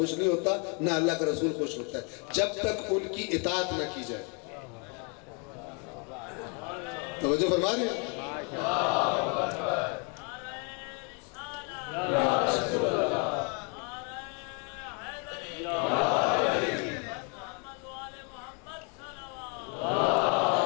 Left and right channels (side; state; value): right; quieter; 35.3 dB